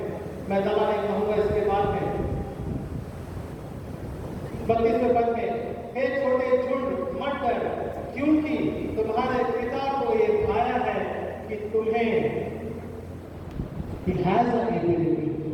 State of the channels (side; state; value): both; identical; correlation 1.00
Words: मैं ज़्यादा नहीं कहूँगा इसके बाद में, 32वें पद में, हे छोटे झुंड मत डर, क्योंकि तुम्हारे पिता को ये भाया है कि तुम्हें He has the ability to